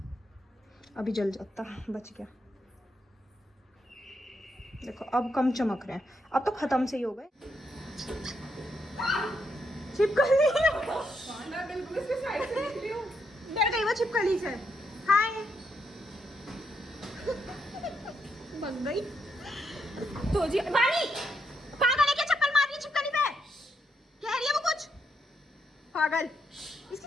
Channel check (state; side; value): normal; both; correlation 0.79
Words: अभी जल जाता, बच गया। देखो अब कम चमक रहे हैं, अब तो खत्म से ही हो गए। छिपकली डर गई वो छिपकली से। हाय बन गई तो जी। वाणी पागल है क्या, चप्पल मार रही है छिपकली पे, कह रही है वो कुछ पागल।